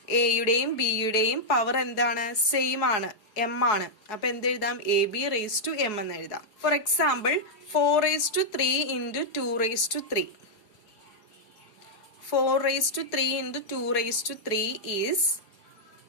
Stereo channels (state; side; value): late; right; 4.7 ms